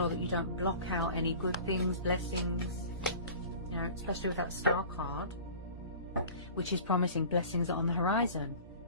that you don't block out any good things, blessings, you know, especially with that Star card, which is promising blessings on the horizon,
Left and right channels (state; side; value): inverted; both; correlation -0.42